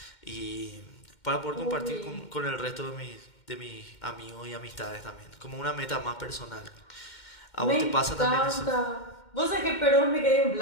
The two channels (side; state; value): right; late; 2.1 ms